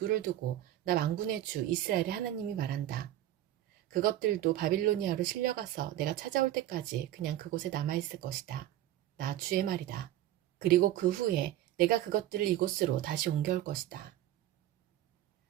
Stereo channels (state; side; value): quieter; left; 13.2 dB